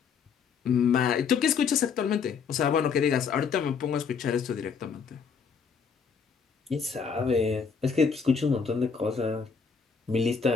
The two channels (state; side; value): quieter; right; 6.0 dB